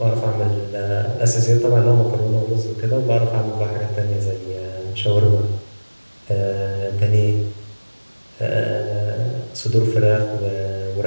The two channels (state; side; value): inverted; both; correlation -1.00